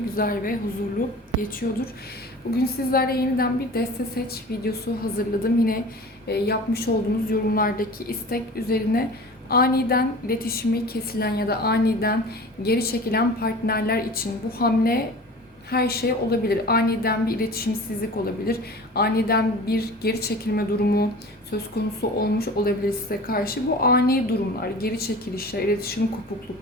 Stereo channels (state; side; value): normal; both; correlation 0.39